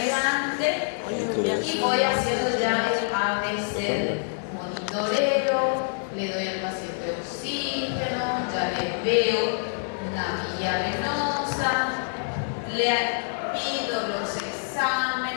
Y voy haciendo ya el ABC, monitoreo, le doy al paciente oxígeno, ya le veo una vía venosa, le pido los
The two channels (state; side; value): silent; right; 61 dB below the other